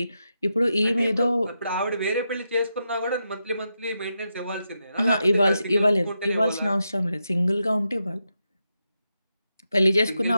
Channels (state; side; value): inverted; both; correlation -0.86